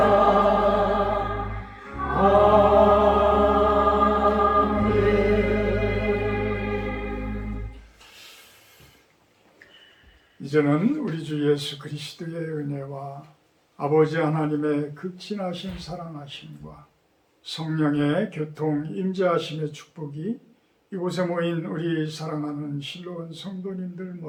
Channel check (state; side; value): identical; both; correlation 1.00